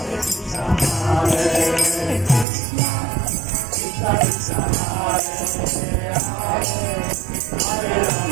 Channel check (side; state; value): left; drops out; at 2.5 s